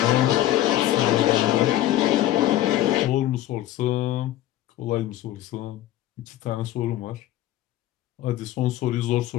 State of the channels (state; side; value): quieter; right; 14.1 dB